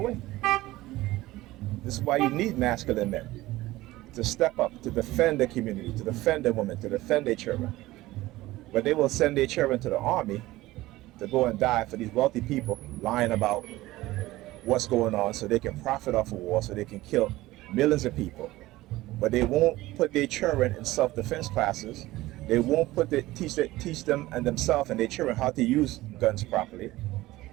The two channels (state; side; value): quieter; left; 17.8 dB